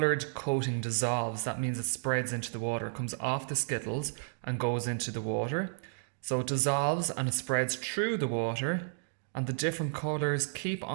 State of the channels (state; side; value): silent; left; digital silence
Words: coating dissolves. That means it spreads into the water, it comes off the Skittles and goes into the water. So it dissolves and it spreads through the water, and the different colours keep